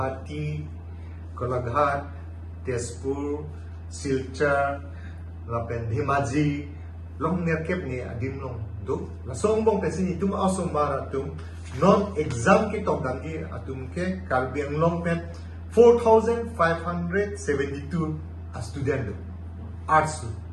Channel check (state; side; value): identical; both; correlation 1.00